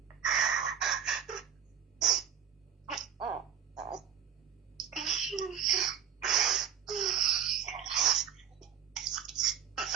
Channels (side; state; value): left; quieter; 8.8 dB